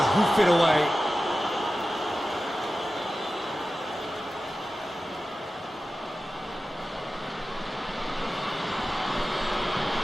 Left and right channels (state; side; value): normal; both; correlation 0.94